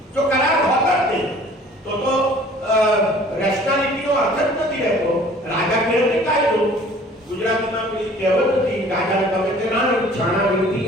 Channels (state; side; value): normal; both; correlation 0.51